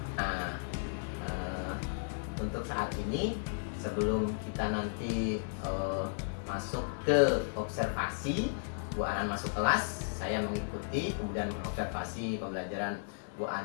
Nah, untuk saat ini sebelum kita nanti masuk ke observasi, Bu Anan masuk kelas, saya mengikuti kemudian observasi pembelajaran Bu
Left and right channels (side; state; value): right; silent; digital silence